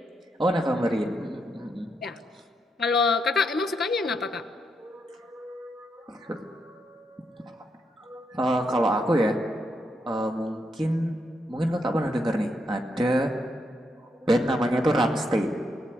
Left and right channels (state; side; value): normal; both; correlation 0.80